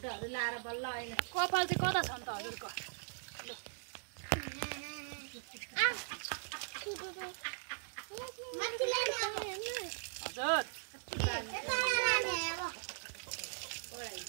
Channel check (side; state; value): left; silent; digital silence